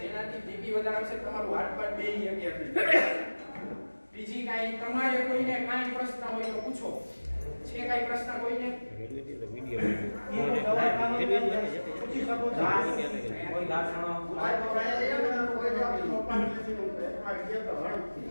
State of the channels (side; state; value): both; inverted; correlation -1.00